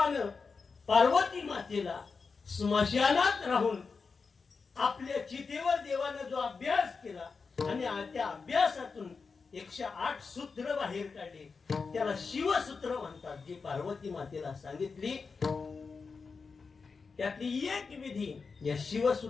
पार्वती मातेला स्मशानात राहून आपल्या चितेवर देवानं जो अभ्यास केला आणि त्या अभ्यासातून 108 सूत्र बाहेर काढले. त्याला शिवसूत्र म्हणतात. जी पार्वती मातेला सांगितली त्यातली एक विधी. या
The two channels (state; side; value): quieter; right; 4.9 dB